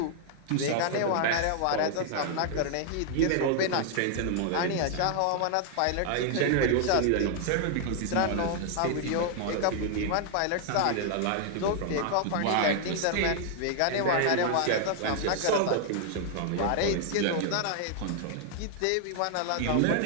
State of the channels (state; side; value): different; both; correlation 0.00